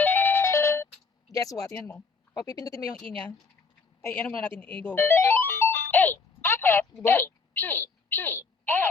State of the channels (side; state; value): right; quieter; 4.8 dB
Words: Guess what? Tingnan mo. Pag pipindutin mo yung E niya, ay, ano muna natin, go. A, apple, Diba? A, P, P, L,